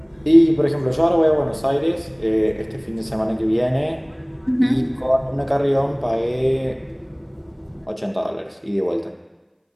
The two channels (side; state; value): both; identical; correlation 1.00